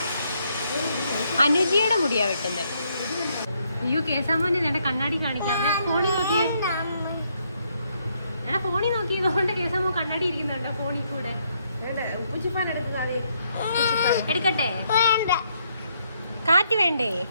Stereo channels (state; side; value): inverted; both; correlation -0.74